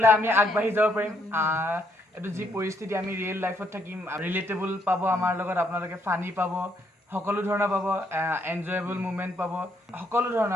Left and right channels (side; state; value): both; normal; correlation 0.73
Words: আমি আগবাঢ়ি যাব পাৰিম এইটো যি পৰিস্থিতি আমি ৰিয়েল লাইফত থাকিম ৰিলেটেবল পাব আমাৰ লগত আপোনালোকে ফানি পাব সকলো ধৰণৰ পাব এনজয়েবল মুভমেণ্ট পাব সকলো